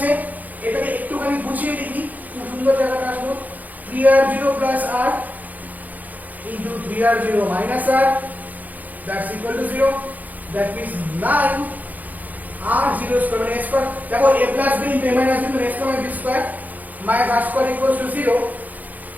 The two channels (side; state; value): left; late; 0.080 ms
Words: এটাকে একটুখানি গুছিয়ে লিখি, খুব সুন্দর জায়গাটা আসলো, 3r0 plus r into 3r0 minus r, that's equal to 0, that means 9 r0 square মানে a square, দেখো a plus b into a minus b into a square minus b square minus r square equals to 0,